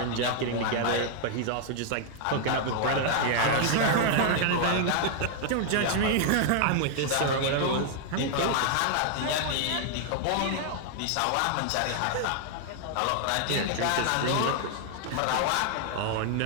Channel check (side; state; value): both; different; correlation 0.00